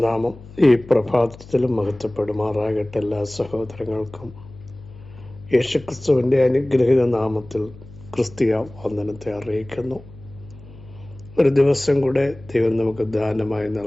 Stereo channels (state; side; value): noise; left; hum, 19 dB below the sound